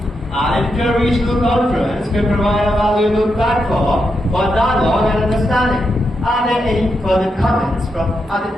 An inter-regional conference can provide a valuable platform for dialogue and understanding. Are there any further comments from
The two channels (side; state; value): both; normal; correlation 0.84